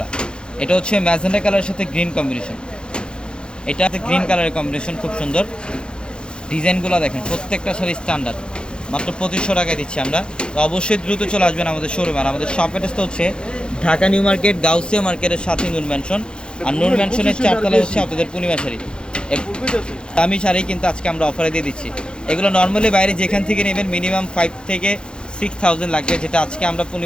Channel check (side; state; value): right; late; 0.051 ms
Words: এটা হচ্ছে ম্যাজেন্ডা কালারের সাথে গ্রিন কম্বিনেশন। এটা গ্রিন কালারের কম্বিনেশন, খুব সুন্দর। ডিজাইনগুলো দেখেন, প্রত্যেকটা শাড়ি স্ট্যান্ডার্ড। মাত্র 2,500 টাকায় দিচ্ছি আমরা। তো অবশ্যই দ্রুত চলে আসবেন আমাদের শোরুমে। আর আমাদের শপ অ্যাড্রেসটা হচ্ছে ঢাকা নিউ মার্কেট, গাউসিয়া মার্কেটের সাথে নূর ম্যানশন। আর নূর ম্যানশনের 4 তলা হচ্ছে আপনাদের পূর্ণিমা শাড়ি। দামি শাড়ি কিন্তু আজকে আমরা অফারে দিয়ে দিচ্ছি। এগুলো নর্মালি বাইরে যেখান থেকে নেবেন মিনিমাম 5 থেকে 6,000 লাগবে, যেটা আজকে আমরা